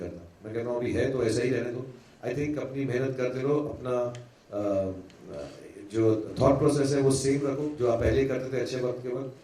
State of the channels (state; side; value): identical; both; correlation 1.00